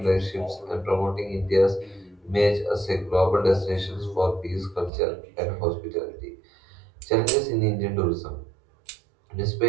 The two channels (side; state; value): left; drops out; at 4.9 s